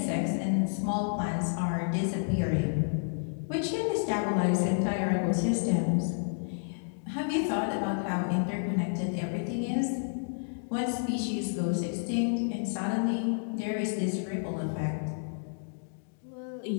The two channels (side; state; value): right; silent; digital silence